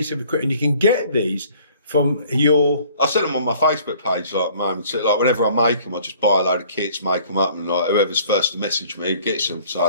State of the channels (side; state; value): both; inverted; correlation -0.54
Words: of equipment. You can get these from your... I send them on my Facebook page, like, moments. Like, whenever I make them, I just buy a load of kits, make them up, and like, whoever's first to message me gets them. So